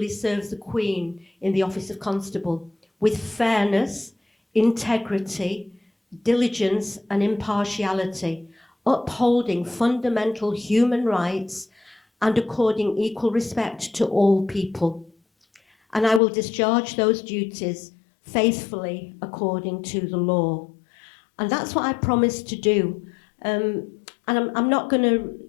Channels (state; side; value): drops out; right; at 16.2 s